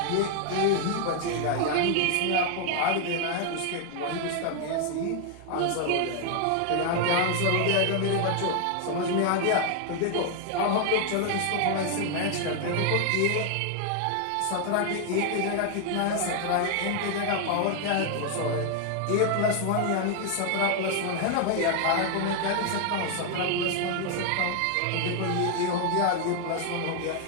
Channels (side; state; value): both; different; correlation 0.00